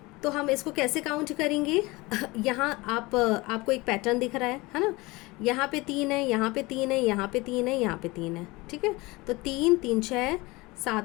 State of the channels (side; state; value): right; quieter; 22.6 dB